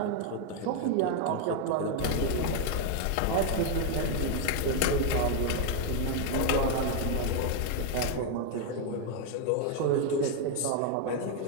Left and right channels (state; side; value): different; both; correlation 0.01